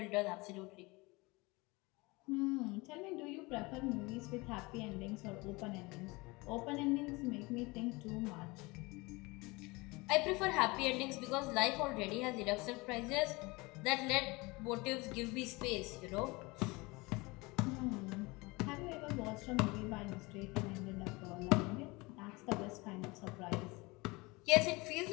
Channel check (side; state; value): right; quieter; 24.5 dB